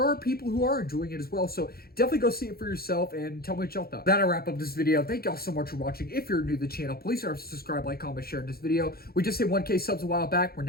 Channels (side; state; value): right; late; 0.44 ms